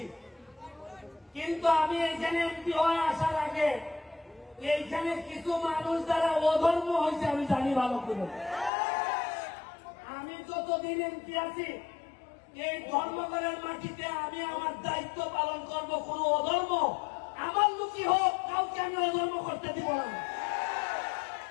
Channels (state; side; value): drops out; right; at 8.7 s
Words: কিন্তু আমি এইখানে এমপি হয়ে আসার আগে এইখানে কিছু মানুষ যারা অধর্ম হয়েছে আমি জানি ভালো করে। আমি যতদিন এমপি আছি এই ধর্মঘটের মাটিতে আমি আমার দায়িত্ব পালন করব। কোন অধর্ম আমার লুকি হোক, কাউকে আমি অধর্ম করতে দিব না।